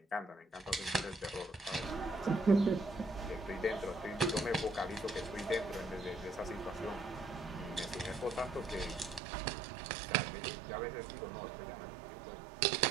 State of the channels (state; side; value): drops out; left; at 9.2 s